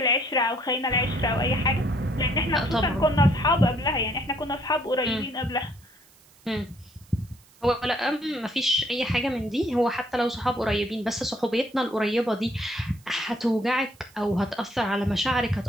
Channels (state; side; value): noise; right; hiss, 28 dB below the sound